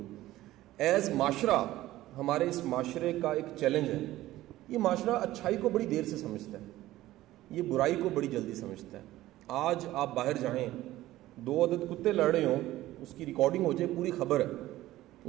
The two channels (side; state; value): left; quieter; 15.7 dB